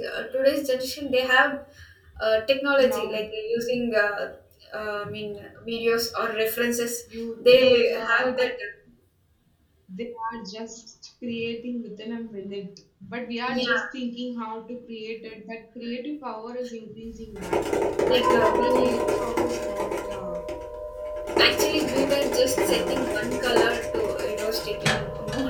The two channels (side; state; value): both; identical; correlation 1.00